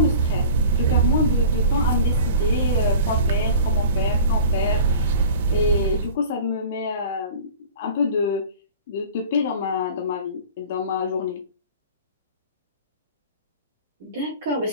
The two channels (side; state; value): both; inverted; correlation -0.40